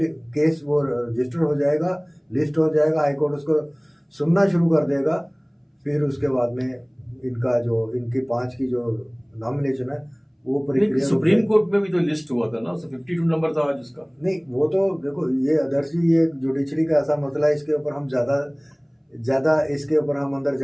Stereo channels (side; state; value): both; identical; correlation 1.00